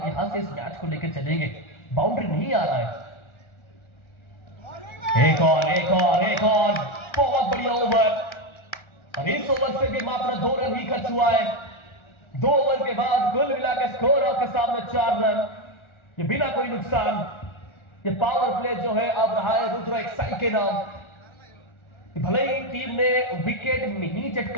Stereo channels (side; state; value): right; late; 1.4 ms